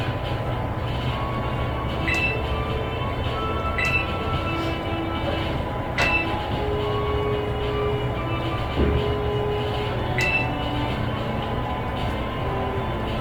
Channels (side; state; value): both; identical; correlation 1.00